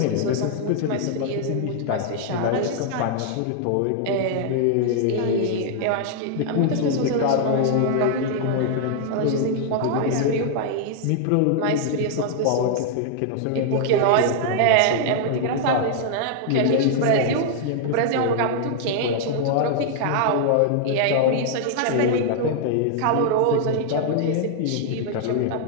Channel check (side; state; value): both; different; correlation -0.01